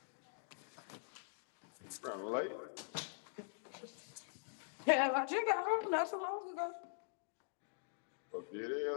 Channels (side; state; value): right; silent; digital silence